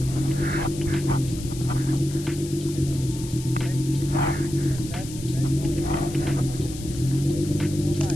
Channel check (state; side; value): noise; left; hiss, 14 dB below the sound